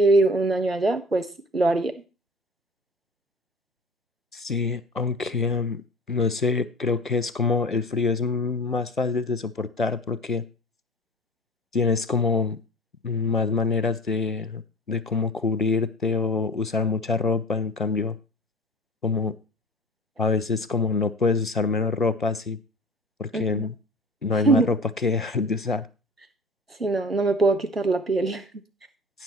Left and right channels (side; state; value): both; normal; correlation 0.40